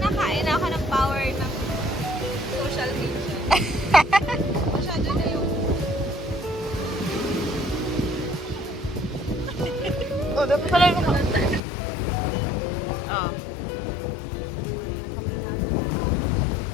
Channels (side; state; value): right; drops out; at 11.6 s